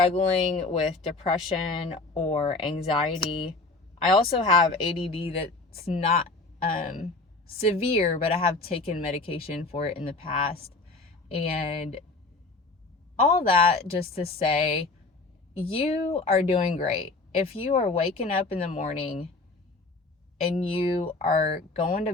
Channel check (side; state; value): right; quieter; 3.4 dB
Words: with depression or anxiety, I also have ADD that's not severe, but I have taken medication for it in the past. And all that just to say, you are doing great. If you are waking up in the morning and you are going to